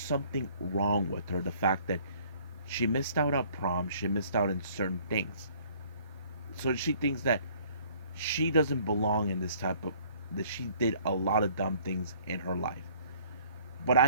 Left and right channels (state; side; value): inverted; both; correlation -0.57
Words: wrong with her. The fact that she missed out on prom. She missed out on certain things. So she thinks that she doesn't belong in this type of... that she did a lot of dumb things in her life. But